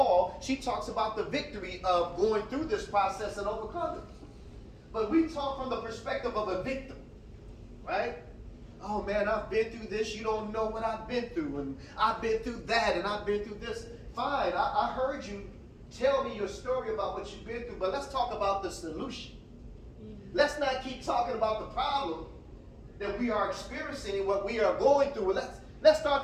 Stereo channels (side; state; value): both; identical; correlation 1.00